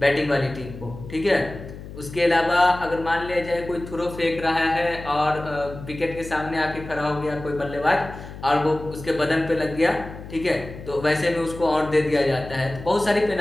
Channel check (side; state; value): left; noise; hum, 13 dB below the sound